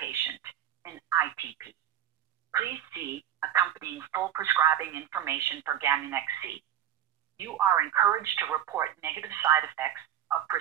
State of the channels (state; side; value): quieter; left; 10.8 dB